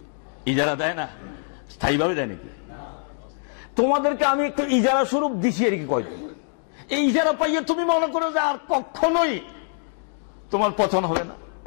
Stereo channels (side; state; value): right; silent; digital silence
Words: ইজারা দেয় না? স্থায়ীভাবে দেয় নাকি? তোমাদেরকে আমি একটু ইজারা স্বরূপ দিছি আর কি, কয়দিন এই ইজারা পাইয়ে তুমি মনে করো যে আর কখনোই তোমার পতন হবে না।